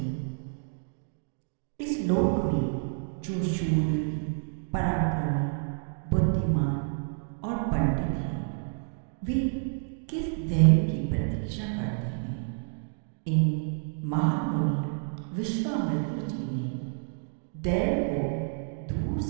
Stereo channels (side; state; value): left; silent; 58 dB below the other